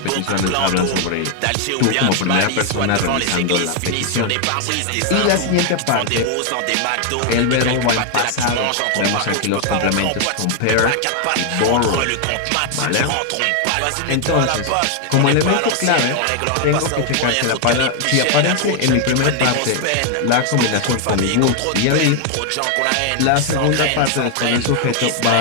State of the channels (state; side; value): different; both; correlation 0.00